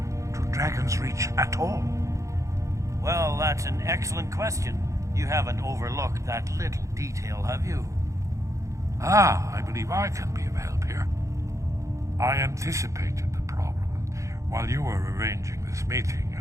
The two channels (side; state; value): left; late; 0.15 ms